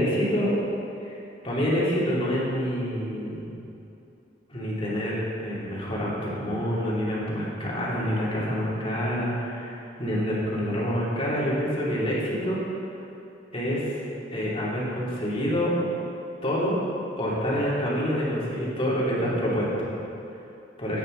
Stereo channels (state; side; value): normal; both; correlation 0.55